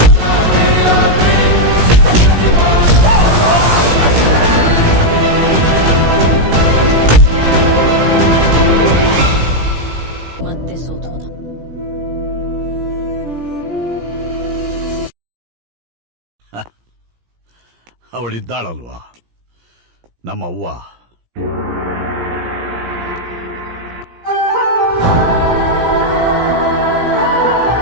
ಮತ್ತೆ ಸೋತ್ ಹೋದ. ಅವಳಿದ್ದಾಳಲ್ವಾ ನಮ್ಮವ್ವ.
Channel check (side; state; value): left; late; 17 ms